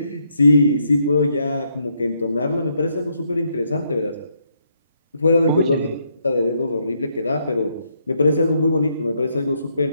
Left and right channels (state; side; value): inverted; both; correlation -0.75